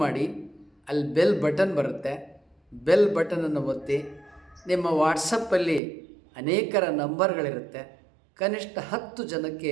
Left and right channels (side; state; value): left; drops out; at 5.8 s